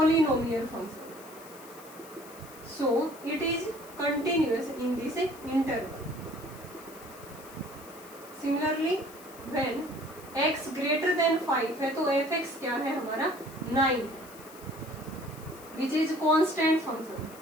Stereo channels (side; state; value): left; noise; hiss, 20 dB below the sound